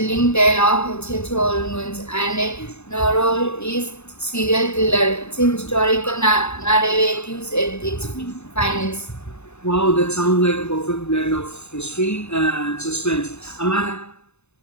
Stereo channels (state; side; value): late; right; 0.81 ms